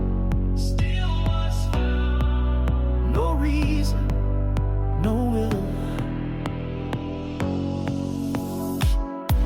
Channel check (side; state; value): both; identical; correlation 1.00